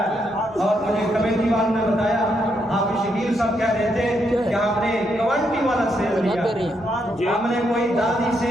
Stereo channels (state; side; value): normal; both; correlation 0.78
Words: ہے۔ اور مجھے کمیٹی والوں نے بتایا آپ شکیل صاحب کہہ رہے تھے کہ آپ نے کوانٹی والا سیب لیا، ہم نے کوئی دادی